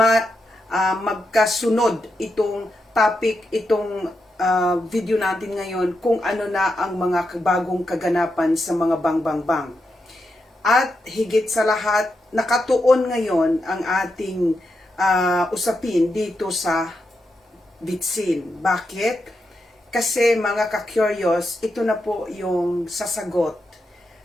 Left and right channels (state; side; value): normal; both; correlation 0.86